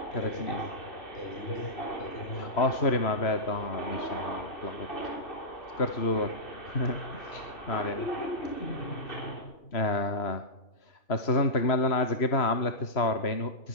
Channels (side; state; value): right; late; 3.0 ms